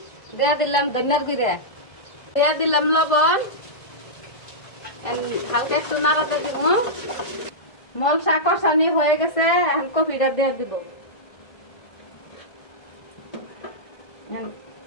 দিয়ে দিলাম ধনিয়ার গুঁড়া, দিয়ে দিলাম লবণ, হালকা একটু নাড়াতে দিব। মশলা কষানি হয়ে গেছে, এখন কপিটা দিয়ে দিব।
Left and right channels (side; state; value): right; late; 1.7 ms